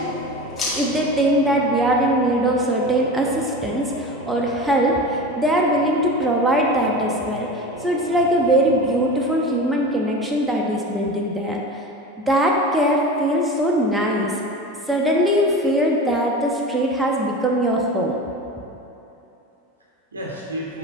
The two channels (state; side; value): normal; both; correlation 0.31